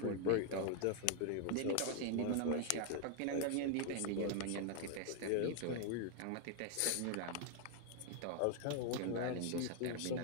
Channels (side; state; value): both; different; correlation 0.00